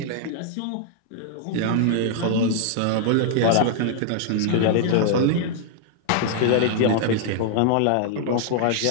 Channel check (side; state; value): both; different; correlation -0.01